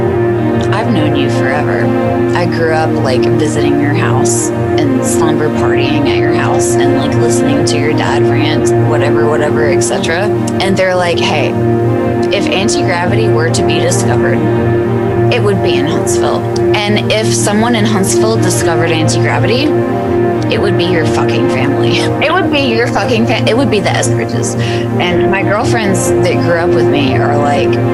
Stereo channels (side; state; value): both; identical; correlation 1.00